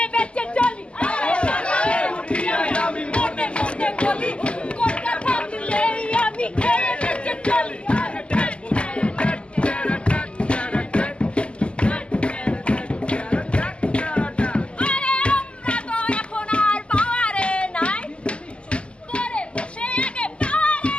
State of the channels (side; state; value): right; late; 0.053 ms